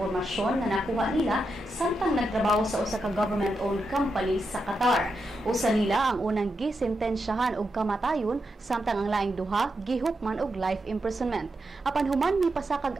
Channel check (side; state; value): both; normal; correlation 0.86